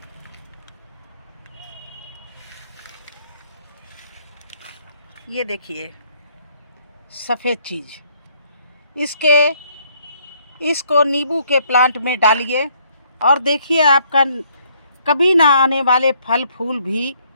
ये देखिए सफ़ेद चीज़, इसको नींबू के प्लांट में डालिए और देखिए आपका कभी ना आने वाले फल फूल भी,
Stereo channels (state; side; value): inverted; both; correlation -0.66